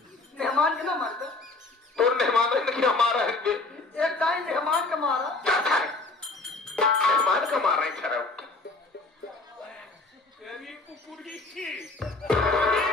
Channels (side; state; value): right; quieter; 3.4 dB